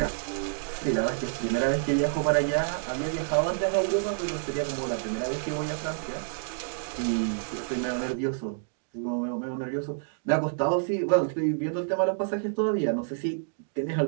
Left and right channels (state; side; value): silent; left; digital silence